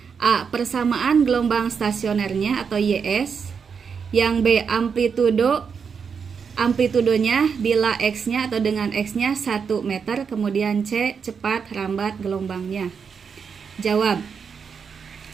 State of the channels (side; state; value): left; quieter; 6.2 dB